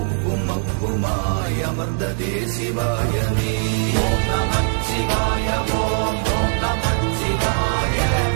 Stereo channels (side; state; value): left; silent; 56 dB below the other